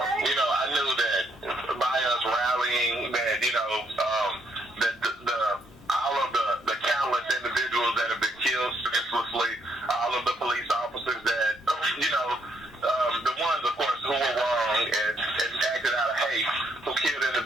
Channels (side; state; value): both; normal; correlation 0.73